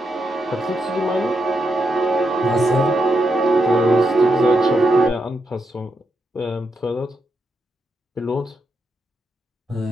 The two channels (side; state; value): both; normal; correlation 0.83